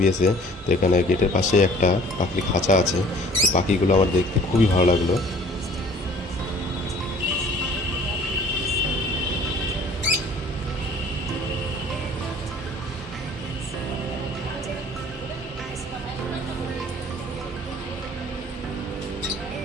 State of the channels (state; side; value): normal; both; correlation 0.51